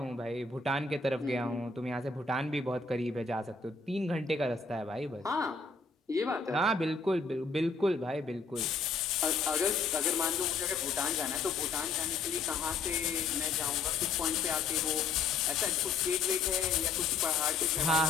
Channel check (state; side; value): quieter; right; 4.5 dB